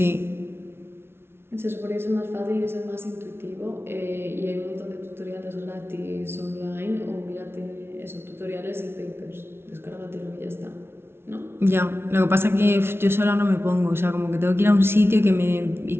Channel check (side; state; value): left; late; 0.12 ms